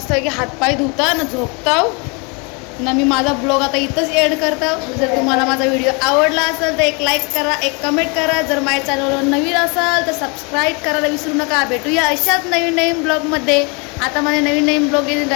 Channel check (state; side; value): quieter; right; 32.1 dB